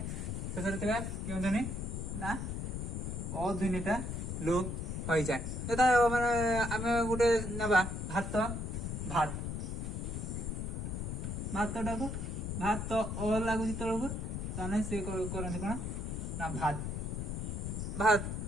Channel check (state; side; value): noise; left; rumble, 3 dB below the sound